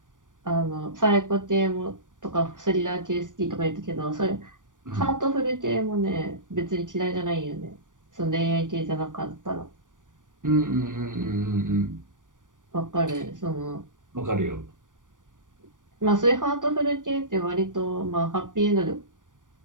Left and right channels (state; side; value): late; left; 0.88 ms